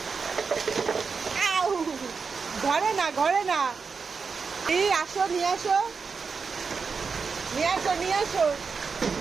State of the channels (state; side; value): quieter; left; 5.2 dB